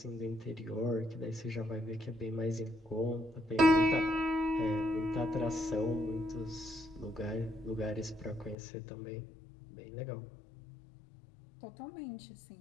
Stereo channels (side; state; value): right; drops out; at 8.6 s